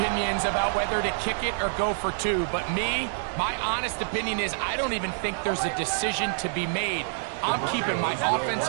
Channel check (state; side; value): silent; left; digital silence